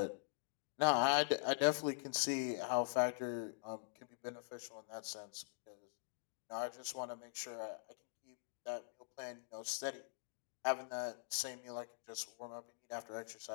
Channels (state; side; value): silent; right; digital silence